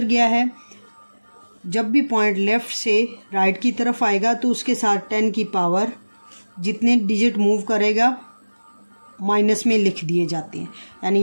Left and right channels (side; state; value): both; inverted; correlation -1.00